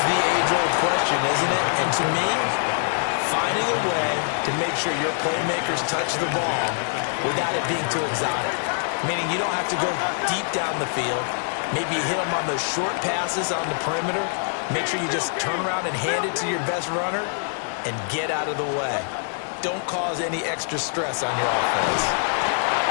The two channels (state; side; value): silent; right; digital silence